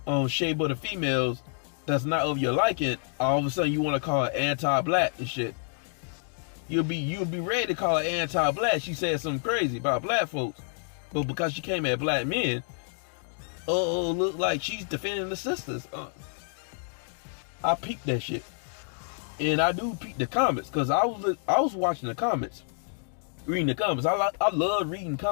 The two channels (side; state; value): right; silent; digital silence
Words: shade of the females that's not of your liking. All of a sudden you want to call her anti-black and shit. You'll be ready to call her anti-black. She said something crazy about black folks, but because she came at black men, look like she's defending the sisters. I peeped that shit. And I do peep the comments, because I was watching the comments, reading the comments. I love reading